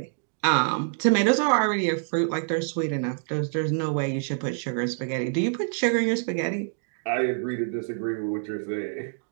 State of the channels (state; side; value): silent; left; digital silence